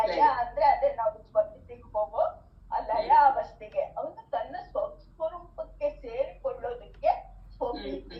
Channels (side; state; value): both; identical; correlation 1.00